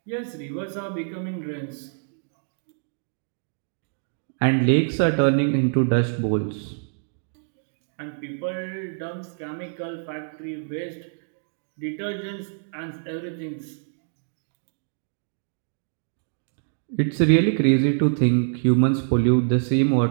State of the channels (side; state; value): left; silent; digital silence